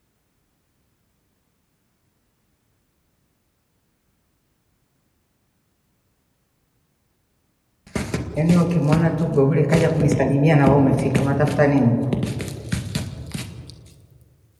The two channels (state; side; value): identical; both; correlation 1.00